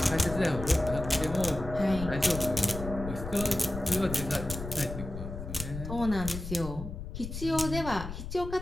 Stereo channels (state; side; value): noise; left; rumble, 8 dB below the sound